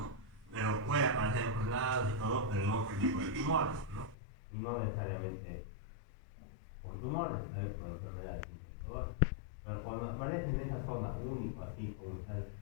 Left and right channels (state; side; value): drops out; right; at 4.2 s